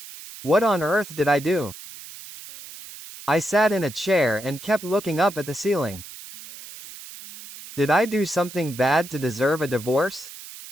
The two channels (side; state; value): right; noise; hiss, 15 dB below the sound